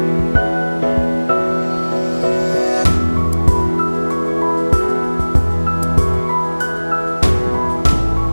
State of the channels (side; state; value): both; inverted; correlation -1.00